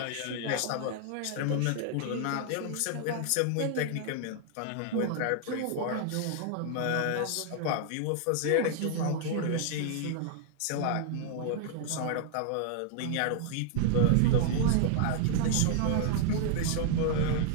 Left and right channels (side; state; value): both; different; correlation 0.00